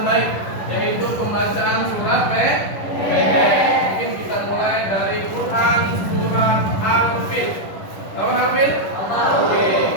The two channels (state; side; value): late; right; 10 ms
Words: baik, yaitu pembacaan surat pendek. Mungkin kita mulai dari Quran surat Al-Fil. Tahu Al-Fil? Oke,